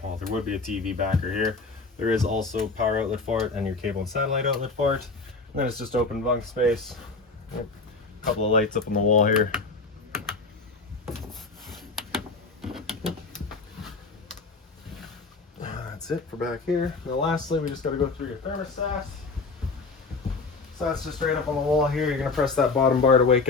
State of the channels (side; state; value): right; quieter; 3.9 dB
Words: well, there would be a TV backer here. There is also power outlet for it and your cable and satellite outlet for it. And then it's just open bunk space. A couple of lights up on the wall here. That's it for back here. Now lastly, we just got to go through your thermostat. So that's just right up on the wall here. You're going to press that bottom bar to wake